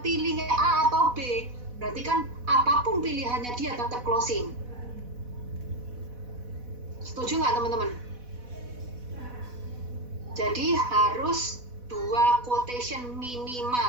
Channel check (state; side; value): late; left; 4.1 ms